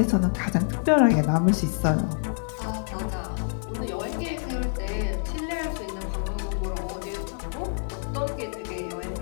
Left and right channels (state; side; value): silent; right; digital silence